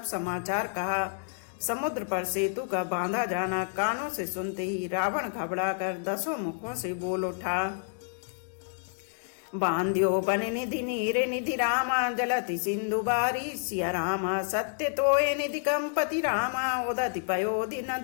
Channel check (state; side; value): silent; right; digital silence